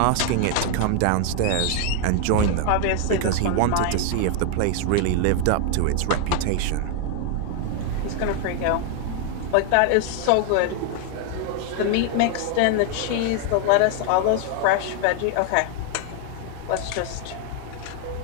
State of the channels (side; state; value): both; different; correlation 0.00